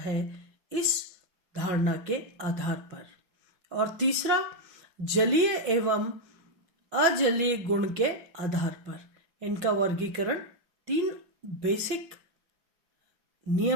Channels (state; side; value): late; left; 5.5 ms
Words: इस धारणा के आधार पर। और तीसरा जलीय एवं अजलीय गुण के आधार पर इनका वर्गीकरण 3 बेसिक